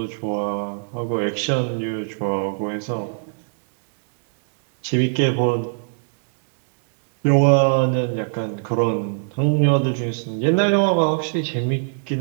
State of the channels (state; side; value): silent; left; digital silence